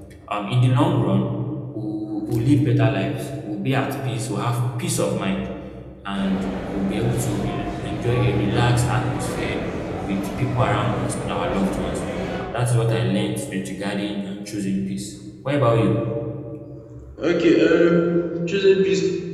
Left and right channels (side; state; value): both; identical; correlation 1.00